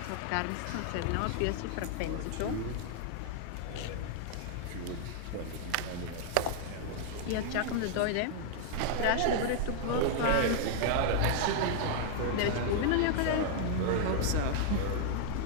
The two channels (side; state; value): both; different; correlation -0.01